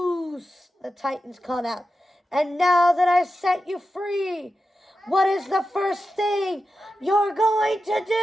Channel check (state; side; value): normal; both; correlation 0.91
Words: the Titans called out. And now that I've set you free, what is the first thing you're going to